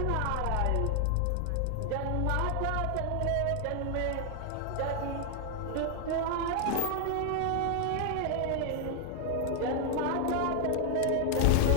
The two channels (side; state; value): both; different; correlation 0.00